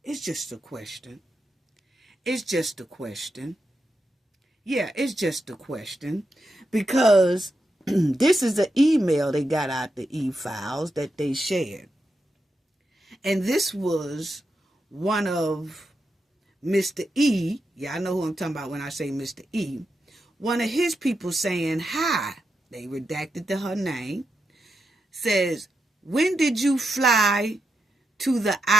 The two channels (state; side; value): normal; both; correlation 0.86